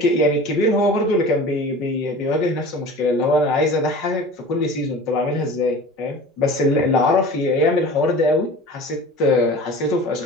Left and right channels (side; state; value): both; normal; correlation 0.38